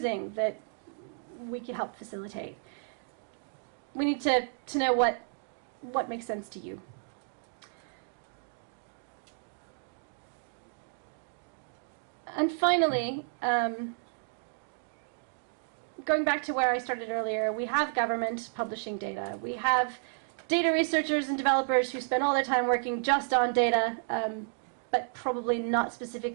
that we could help facilitate? We need to know what makes sense to you. And finally, going back to where I started earlier, we have government publishing data. We have data researchers and developers who spend all their time working just on data, but probably not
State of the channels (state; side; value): silent; left; digital silence